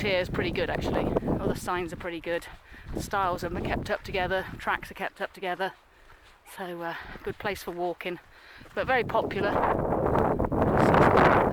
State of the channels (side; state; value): both; identical; correlation 1.00